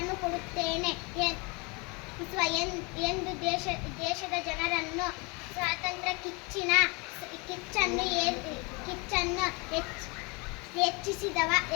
ಕೊಡುತ್ತೇನೆ ಎಂದು ದೇಶದ ಜನರನ್ನು ಸ್ವಾತಂತ್ರ್ಯ ಕಿಚ್ಚನ್ನು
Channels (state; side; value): quieter; right; 29.0 dB